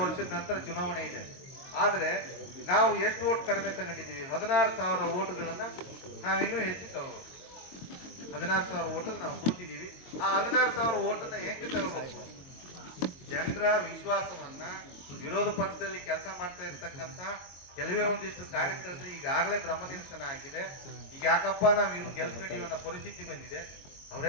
ವರ್ಷದ ನಂತರ ಚುನಾವಣೆ ಇದೆ. ಆದ್ರೆ ನಾವು ಎಷ್ಟು ಓಟ್ ಕಡಿಮೆ ತಗೊಂಡಿದ್ದೀವಿ? 16,000 ಓಟ್ಗಳನ್ನ ನಾವು ಇನ್ನೂ ಹೆಚ್ಚು ತಗೋಬೇಕು. 16,000 ಓಟಲ್ಲಿ ನಾವು ಸೋತಿದ್ದೀವಿ. ಆ 16,000 ಓಟನ್ನ ಏಕೆ ತಗೋಬೇಕು? ಜನರ ವಿಶ್ವಾಸವನ್ನ, ವಿರೋಧ ಪಕ್ಷದಲ್ಲಿ ಕೆಲಸ ಮಾಡ್ತಾ ಇರ್ತಕ್ಕಂಥ ಕೆಲವೇ ಒಂದಿಷ್ಟು ಕಾರ್ಯಕರ್ತರು ಈಗಾಗಲೇ ಭ್ರಮನಿರಸನ ಆಗಿದೆ. ಈಗ ಯಾಕಪ್ಪ ನಾವು ಇನ್ನು ಗೆಲ್ಸ್ಕೊಂಡಿವಿ ಅನ್ನೋ ಪರಿಸ್ಥಿತಿ ಬಂದಿದೆ.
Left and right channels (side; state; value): right; late; 22 ms